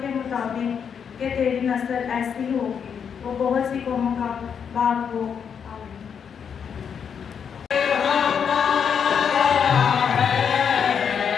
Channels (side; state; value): right; quieter; 7.3 dB